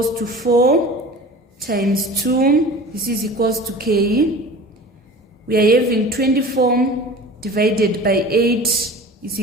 to 4 times 2, this is equals to k. We are having 24 divided by 8 is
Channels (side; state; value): both; normal; correlation 0.39